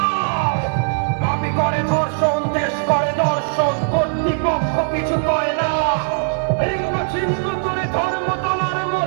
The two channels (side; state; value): left; silent; digital silence